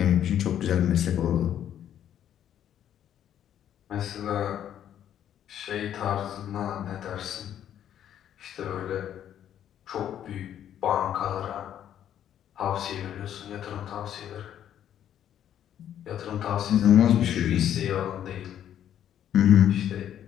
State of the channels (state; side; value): quieter; right; 10.4 dB